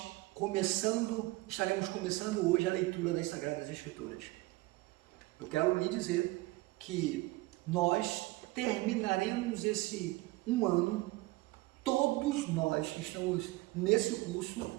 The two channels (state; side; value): quieter; left; 20.5 dB